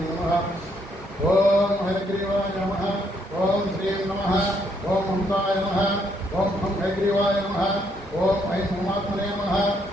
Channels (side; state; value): both; normal; correlation 0.72